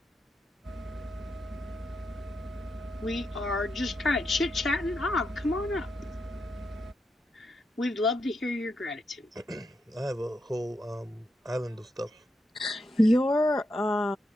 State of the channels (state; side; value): normal; both; correlation 0.83